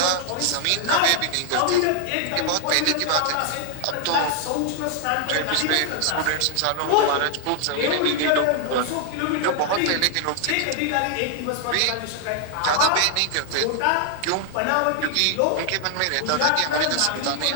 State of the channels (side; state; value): both; different; correlation 0.00